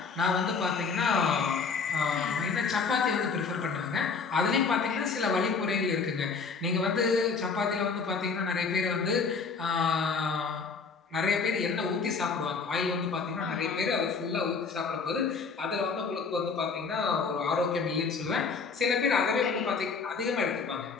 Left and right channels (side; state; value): right; quieter; 5.0 dB